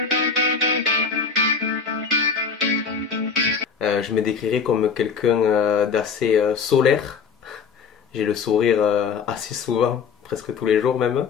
Je me décrirais comme quelqu'un d'assez solaire. J'ai le sourire assez souvent, presque tous les jours même.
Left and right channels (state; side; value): quieter; right; 5.7 dB